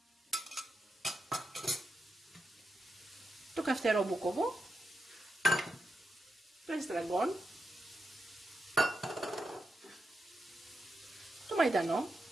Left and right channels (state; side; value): normal; both; correlation 0.86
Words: το καυτερό μπούκοβο, το εστραγκόν, το μαϊντανό